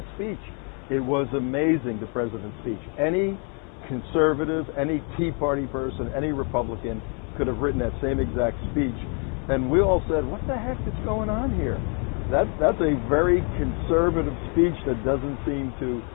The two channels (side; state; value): right; quieter; 38.5 dB